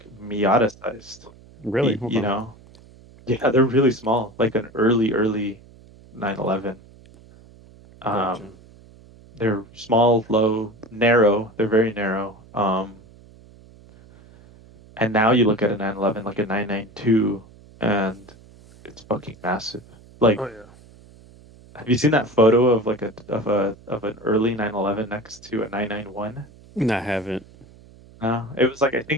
Miata sized, Really? Hold you on. know? Yeah, they're really small, like an early 911. Gotcha. Um, they're small, low, narrow. They're very narrow. And now you look at a 911 like a 992, and it's fucking massive. Oh Like, yeah. have you seen that photo of like of an early 911 next to a 991? No, I haven't. No, it was like I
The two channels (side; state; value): right; noise; hum, 24 dB below the sound